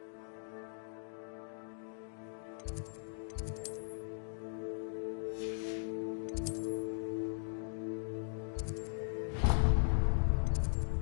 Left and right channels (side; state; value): right; silent; digital silence